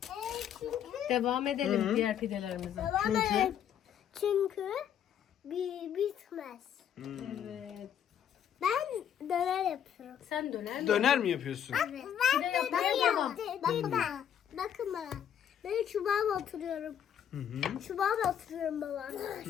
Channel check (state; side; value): quieter; right; 9.3 dB